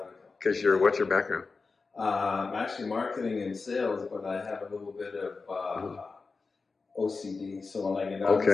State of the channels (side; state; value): right; quieter; 4.3 dB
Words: Because what's your background? I'm actually marketing and sales, but I have a little bit of OCD. So when I get out